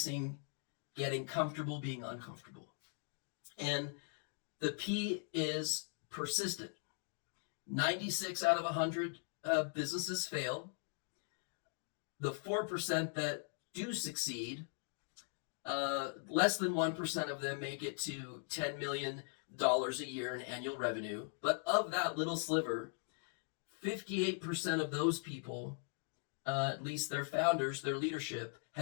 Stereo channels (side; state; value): right; silent; 51 dB below the other